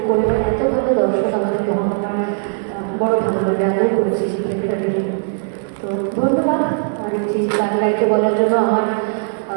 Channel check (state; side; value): silent; left; 67 dB below the other